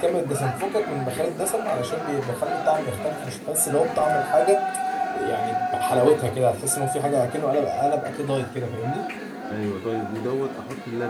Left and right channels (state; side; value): identical; both; correlation 1.00